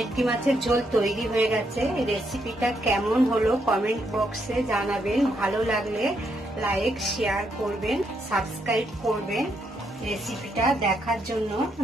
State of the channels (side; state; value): both; normal; correlation 0.77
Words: মাছের ঝোল তৈরি হয়ে গেছে। রেসিপিটা কেমন হলো কমেন্ট বক্সে জানাবেন। ভালো লাগলে লাইক শেয়ার করবেন, সাবস্ক্রাইব করবেন। রেসিপিটা দেখার জন্য